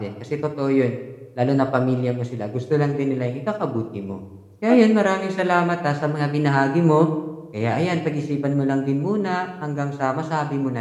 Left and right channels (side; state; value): both; identical; correlation 1.00